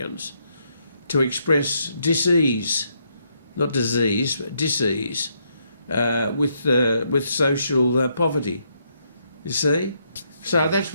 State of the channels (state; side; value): inverted; both; correlation -0.75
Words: to express dis-ease, not disease, but dis-ease, with social poverty. You see? So that's